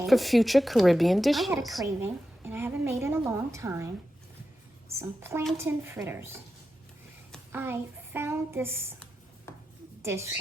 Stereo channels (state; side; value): normal; both; correlation 0.90